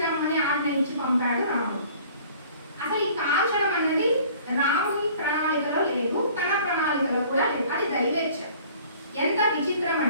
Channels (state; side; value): inverted; both; correlation -0.51